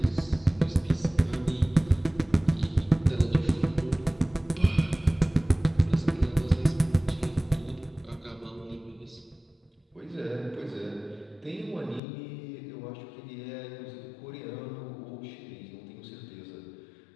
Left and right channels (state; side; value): drops out; right; at 12.0 s